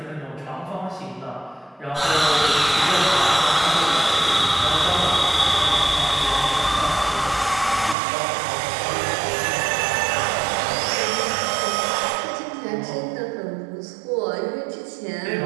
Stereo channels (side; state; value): left; drops out; at 8.0 s